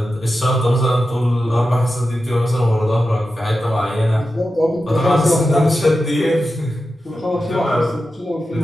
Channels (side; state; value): both; normal; correlation 0.91